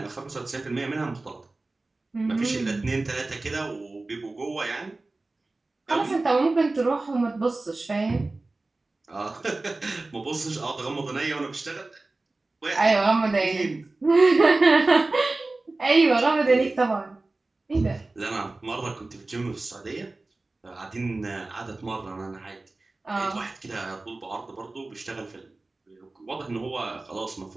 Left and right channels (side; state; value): left; quieter; 3.2 dB